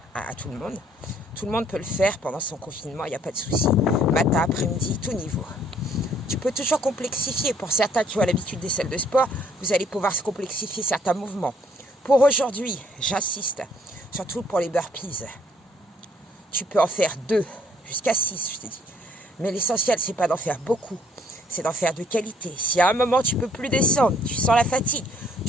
tout le monde. Tout le monde peut le faire pendant son confinement, il n'y a pas de souci. Matin, après-midi, tout niveau. Tu peux toujours complexifier. Pour certains qui ont l'habitude des salles de sport, vous allez pouvoir se complexifier certains mouvements. Pour aujourd'hui, j'insiste, surtout pour les burpees, tu peux en faire 2, jusqu'à 6, je te dis. Mais l'essentiel, c'est pas d'en faire beaucoup, c'est d'en faire de qualité. Si à un moment, tu peux plus descendre, tu sens la fatigue,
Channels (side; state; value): both; normal; correlation 0.64